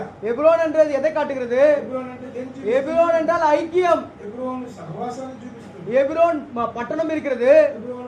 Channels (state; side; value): identical; both; correlation 1.00